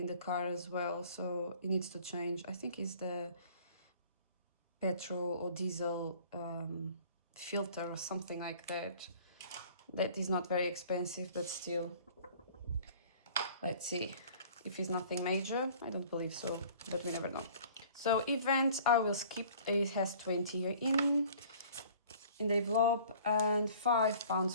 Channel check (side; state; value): both; inverted; correlation -0.50